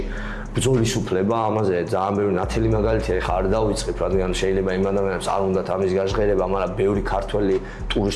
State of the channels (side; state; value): both; identical; correlation 1.00